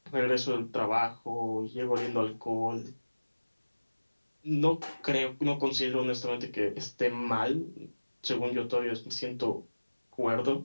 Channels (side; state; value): both; inverted; correlation -1.00